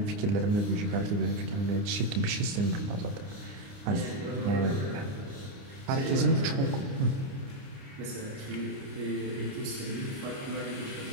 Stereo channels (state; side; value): late; left; 29 ms